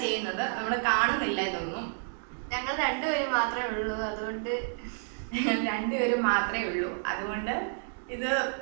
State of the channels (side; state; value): left; silent; digital silence